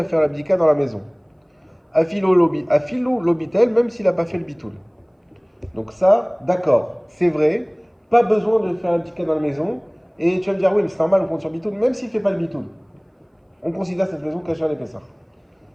faire l'abdika dans la maison. Afilou lobitel, même s'il n'a pas fait le bitoul. Donc ça, d'accord, c'est vrai, pas besoin de faire l'abdika dans la maison. Et tu vas me dire, oui, mais c'est normal, on compte sur bitoul, même s'il ne fait pas le bitoul. On considère cette maison cachée à l'épaisseur.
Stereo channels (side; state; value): both; identical; correlation 1.00